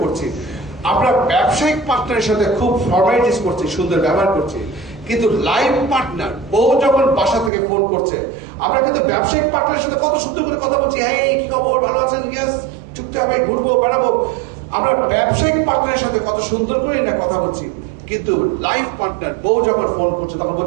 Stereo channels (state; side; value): drops out; left; at 7.5 s